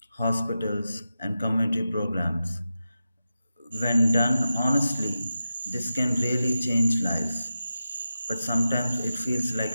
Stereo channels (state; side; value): inverted; both; correlation -0.91